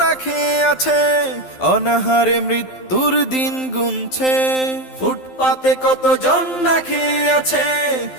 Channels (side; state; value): right; late; 12 ms